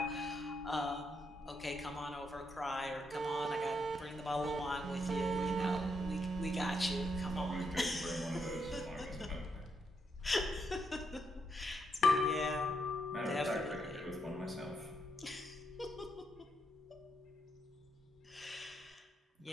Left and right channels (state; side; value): normal; both; correlation 0.79